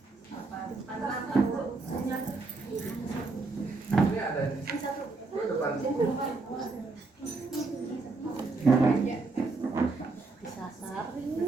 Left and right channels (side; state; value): left; quieter; 3.6 dB